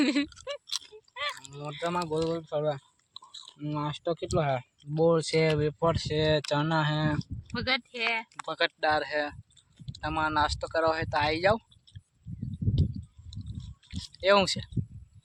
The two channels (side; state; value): both; identical; correlation 1.00